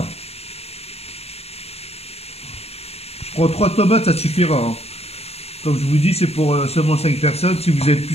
Je prends 3 tomates, ça suffira. Hein. Comme je vous dis, c'est pour seulement 5 personnes. Si vous êtes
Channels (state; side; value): late; right; 0.30 ms